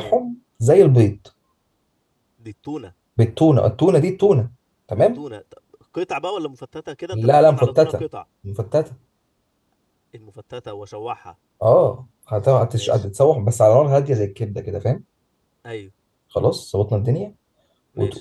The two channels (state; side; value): identical; both; correlation 1.00